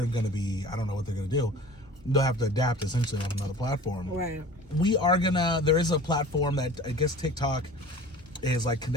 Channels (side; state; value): both; normal; correlation 0.42